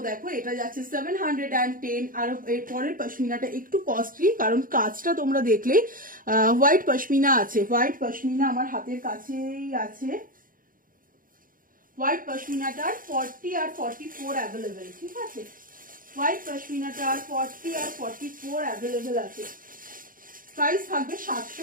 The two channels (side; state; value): left; late; 0.40 ms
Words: দেখো এটা যাচ্ছে 710। আর এর পরের পশমিনাটা একটু কস্টলি, কারণ কাজটা তোমরা দেখলে হোয়াইট পশমিনা আছে। হোয়াইট পশমিনা আমার হাতের কাছেই আছে। হোয়াইট পশমিনাটার 40 আর 44 অ্যাভেলেবেল, ঠিক আছে? হোয়াইট পশমিনাটার 40 আর 44 অ্যাভেলেবেল আছে। প্রাইস থাকবে